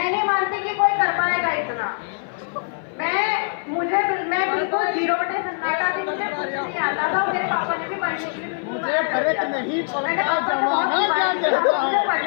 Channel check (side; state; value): right; silent; 57 dB below the other